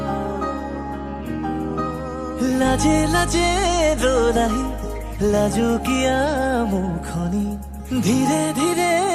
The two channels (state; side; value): identical; both; correlation 1.00